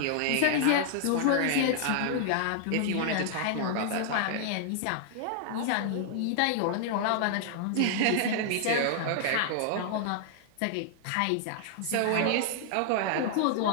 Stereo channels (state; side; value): different; both; correlation -0.01